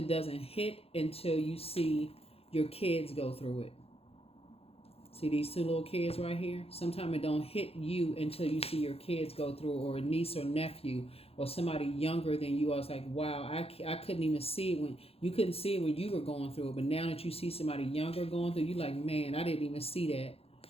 doesn't hit until you see your kids go through it. See these two little kids right here? Sometimes it don't hit you until you see your kids go through, or a niece or nephew, or somebody younger than you. I was like, wow, I couldn't even see it when you couldn't see it when you were going through it. But now that you see somebody younger going through, you're like, man, I didn't even see that.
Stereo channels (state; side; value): late; right; 0.29 ms